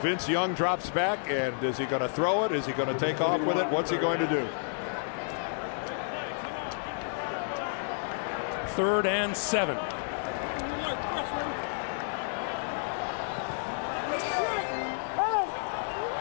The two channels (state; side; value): silent; right; digital silence